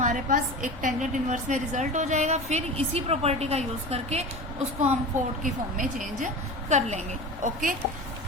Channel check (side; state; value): both; normal; correlation 0.31